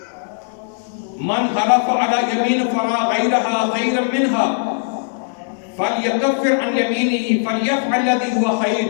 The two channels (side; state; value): right; silent; digital silence